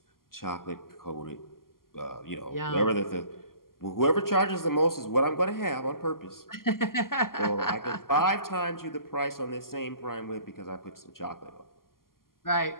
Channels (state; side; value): late; right; 0.92 ms